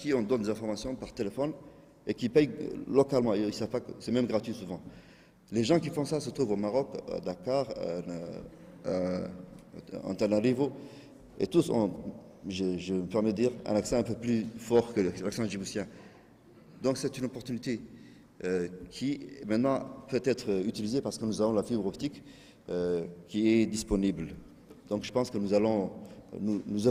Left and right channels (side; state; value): both; identical; correlation 1.00